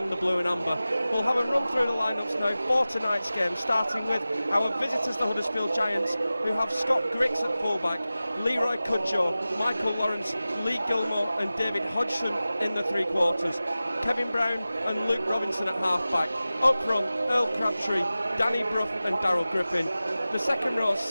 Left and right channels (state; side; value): inverted; both; correlation -0.96